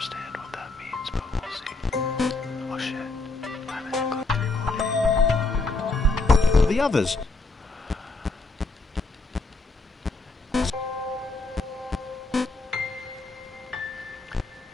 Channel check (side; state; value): right; quieter; 3.2 dB